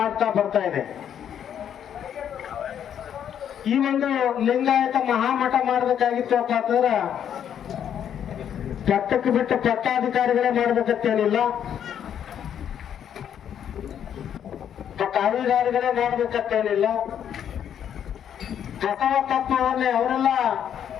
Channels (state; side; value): quieter; right; 9.2 dB